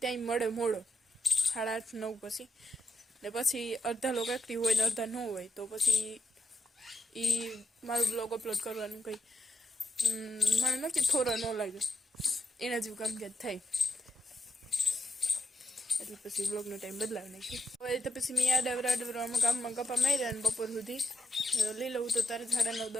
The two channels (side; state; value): both; normal; correlation 0.82